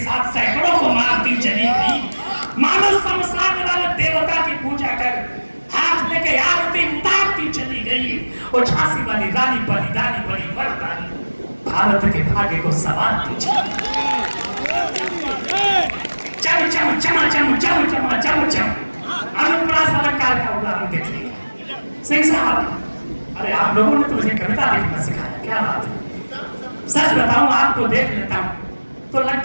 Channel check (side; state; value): both; inverted; correlation -1.00